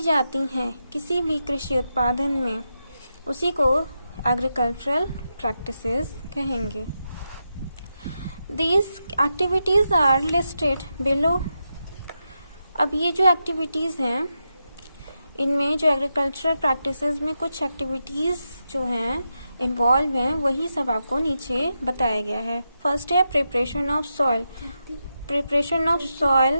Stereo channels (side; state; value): both; inverted; correlation -0.87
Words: जाती हैं किसी भी कृषि उत्पादन में, उसी को एग्रीकल्चरल प्रैक्टिसेस कहेंगे। These activities are listed below। अब ये जो एक्टिविटीज़ हैं, इनमें जो एग्रीकल्चरल प्रैक्टिसेस में कुछ एक्टिविटीज़ जो हैं इन्वॉल्व हैं, वही सब आपको नीचे बताया गया है। फर्स्ट है preparation of soil. Preparation of